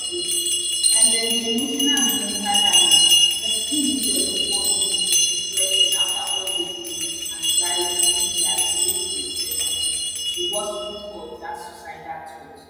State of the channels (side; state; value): both; identical; correlation 1.00